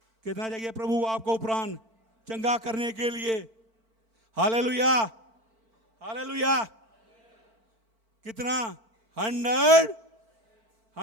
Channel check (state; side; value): late; left; 4.5 ms